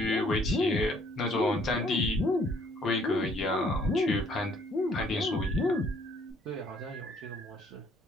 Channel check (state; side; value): normal; both; correlation 0.62